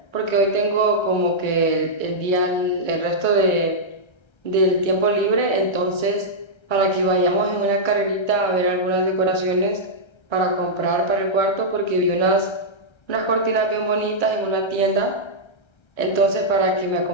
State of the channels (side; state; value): right; late; 1.3 ms